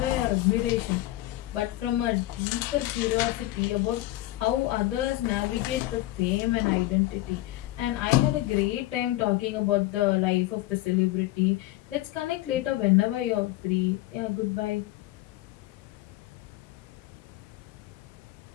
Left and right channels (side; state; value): right; quieter; 16.9 dB